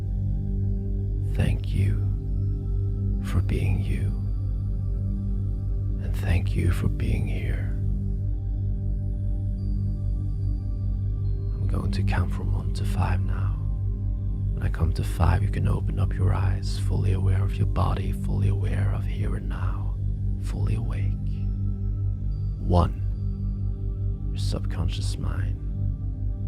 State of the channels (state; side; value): identical; both; correlation 1.00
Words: Thank you for being you. And thank you for being here. I'm going to count from 1 to 5 now. When I come to 5, you can open up your eyes, fully aware of your body, fully aware of here and now, fully awake. 1, your subconscious mind